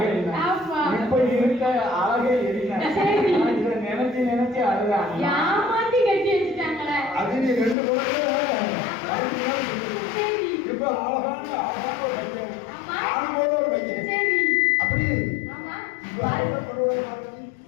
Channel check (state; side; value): drops out; right; at 7.8 s